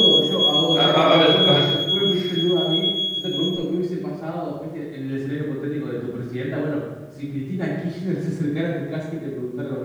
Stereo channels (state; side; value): identical; both; correlation 1.00